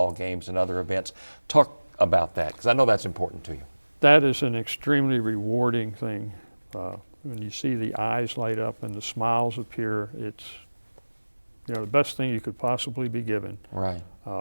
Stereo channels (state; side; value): inverted; both; correlation -1.00